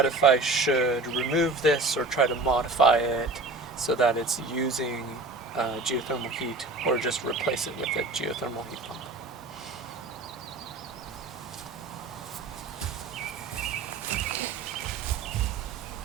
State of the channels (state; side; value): quieter; left; 3.4 dB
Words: if I should remove this or try to modify it so that it's using geothermal heat, or just replace it with a geothermal heat pump.